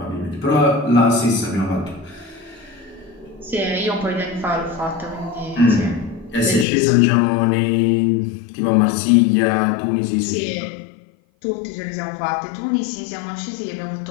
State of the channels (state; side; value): drops out; right; at 6.7 s